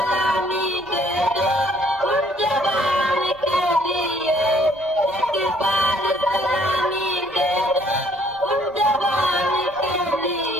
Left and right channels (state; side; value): noise; right; rumble, 25 dB below the sound